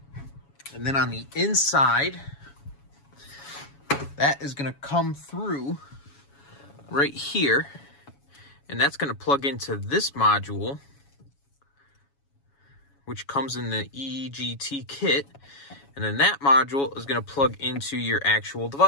And then on the inside, that is going to come through right here. And that's going to plug into this module, which comes in the EGT kit. And then that module is going to plug into your actual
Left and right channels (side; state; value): right; late; 7.2 ms